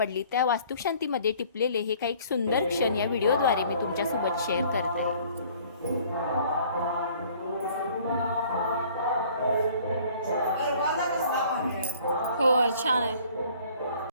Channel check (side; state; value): both; inverted; correlation -0.55